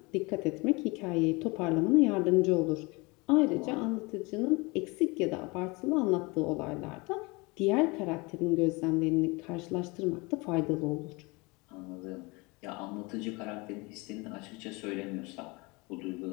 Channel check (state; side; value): quieter; right; 26.1 dB